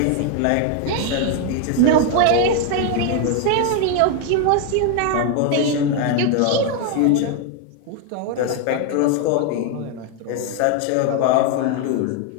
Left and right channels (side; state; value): both; different; correlation 0.01